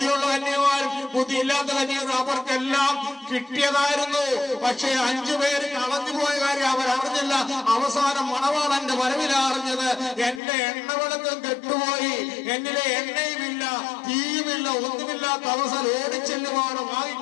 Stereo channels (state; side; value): drops out; right; at 10.4 s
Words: കന്യകമാരും ബുദ്ധിയില്ലാത്ത കന്യകമാരും അവർക്കെല്ലാം കിട്ടിയതായിരുന്നു. പക്ഷേ 5 പേര് കളഞ്ഞുപോയ കാര്യം അവരറിഞ്ഞില്ല. അവസാനം മണവാളന്റെ വരവില അറിഞ്ഞത്. എന്റെ എണ്ണവിളക്കം കെട്ടുപോയി, എന്നിലെ എണ്ണയുമില്ല, തീയുമില്ല, ഒന്നുമില്ലാത്ത അവസരം ഓടിച്ചെല്ലുവാണ്